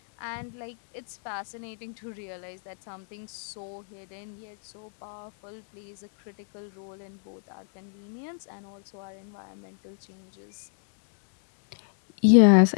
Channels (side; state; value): right; silent; 59 dB below the other